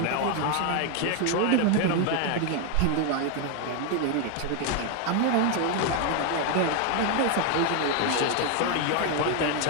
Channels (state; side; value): different; both; correlation 0.01